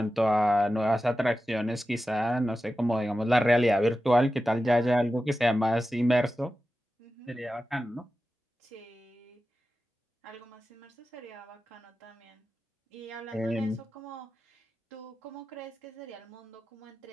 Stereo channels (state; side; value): normal; both; correlation 0.93